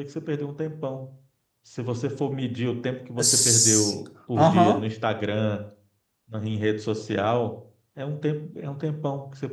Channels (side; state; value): both; identical; correlation 1.00